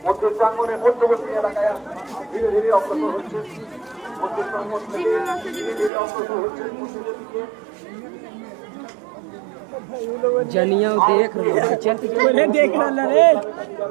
মধ্য প্রাঙ্গনের মধ্যবর্তী এলাকায় ধীরে ধীরে অগ্রসর হচ্ছে মধ্য প্রাঙ্গন থেকে ধীরে ধীরে অগ্রসর হচ্ছে মন্দিরের দিকে जनिया देख रहा चल बोले देख रहा रे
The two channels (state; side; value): drops out; left; at 5.9 s